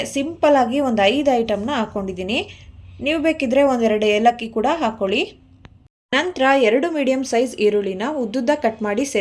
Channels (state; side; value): identical; both; correlation 1.00